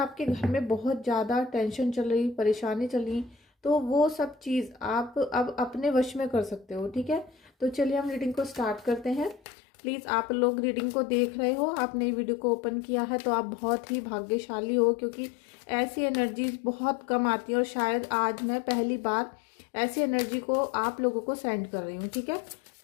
घर में बहुत ज़्यादा टेंशन चल रही, परेशानी चल रही, तो वो सब चीज़ आप अब अपने वश में कर सकते हो। ठीक है, तो चलिए हम रीडिंग को स्टार्ट करते हैं। प्लीज़, आप लोग रीडिंग को देख रहे हो, आपने वीडियो को ओपन किया है तो आप बहुत ही भाग्यशाली हो, क्योंकि ऐसी एनर्जीज बहुत कम आती है और शायद आज मैं पहली बार ऐसी एनर्जी को आप लोगों को सेंड कर रही हूँ। ठीक है,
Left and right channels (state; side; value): drops out; right; at 9.4 s